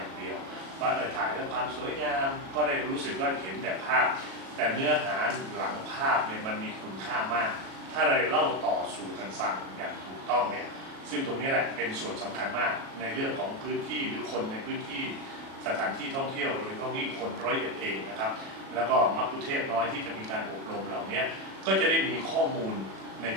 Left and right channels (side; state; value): left; late; 37 ms